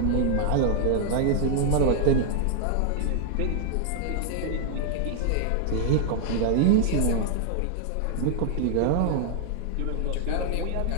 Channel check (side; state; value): both; different; correlation 0.00